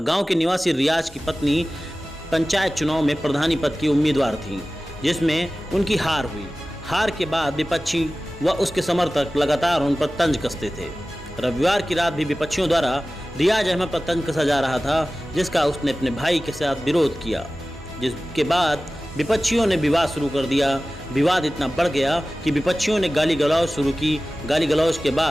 गांव के निवासी रियाज की पत्नी पंचायत चुनाव में प्रधानी पद की उम्मीदवार थी, जिसमें उनकी हार हुई। हार के बाद विपक्षी व उसके समर्थक लगातार उन पर तंज कसते थे। रविवार की रात भी विपक्षियों द्वारा रियाज अहमद पर तंज कसा जा रहा था, जिसका उसने अपने भाई के साथ विरोध किया, जिसके बाद विपक्षियों ने विवाद शुरू कर दिया। विवाद इतना बढ़ गया कि विपक्षियों ने गाली गलौज शुरू की। गाली गलौज के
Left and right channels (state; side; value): normal; both; correlation 0.96